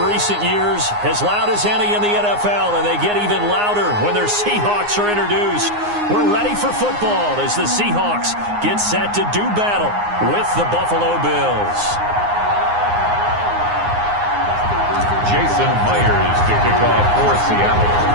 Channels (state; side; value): late; left; 9.6 ms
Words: recent years, as loud as any in the NFL, and they get even louder when their Seahawks are introduced. We're ready for football as the Seahawks get set to do battle with the Buffalo Bills. Jason Myers to kick off for